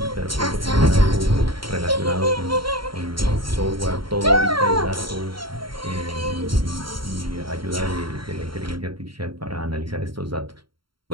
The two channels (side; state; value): left; late; 0.73 ms